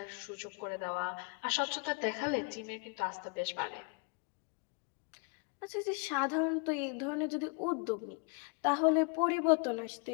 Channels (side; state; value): right; quieter; 35.7 dB